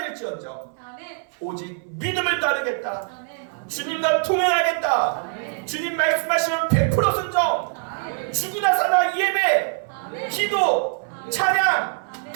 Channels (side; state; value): left; silent; 62 dB below the other